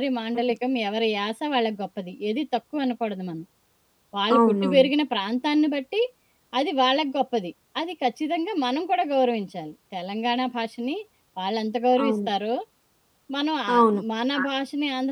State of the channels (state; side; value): identical; both; correlation 1.00